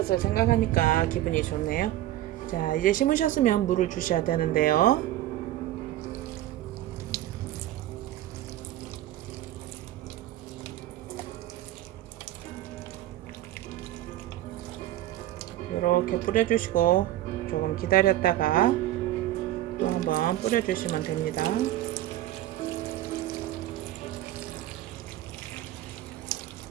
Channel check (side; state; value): left; quieter; 14.3 dB